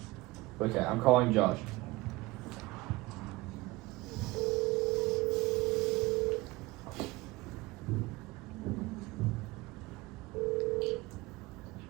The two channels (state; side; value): quieter; left; 20.0 dB